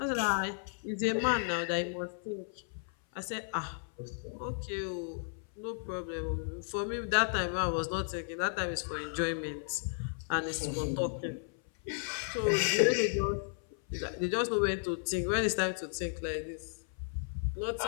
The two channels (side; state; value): right; silent; 55 dB below the other